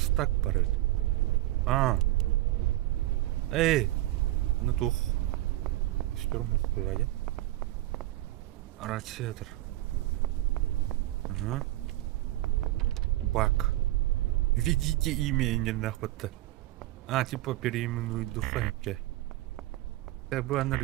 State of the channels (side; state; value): left; quieter; 16.4 dB